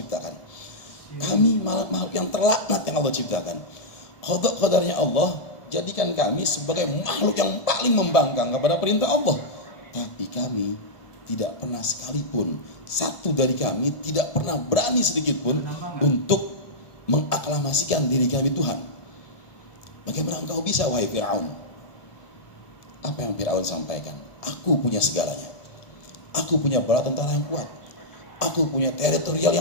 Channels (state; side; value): late; right; 1.7 ms